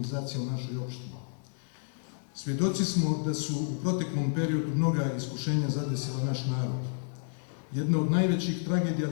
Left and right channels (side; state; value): right; silent; 57 dB below the other